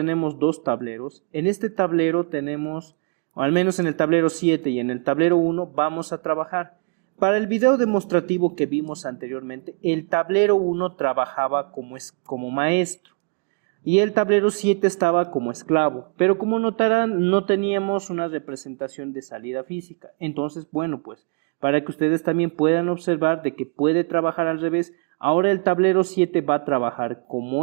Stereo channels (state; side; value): quieter; left; 37.0 dB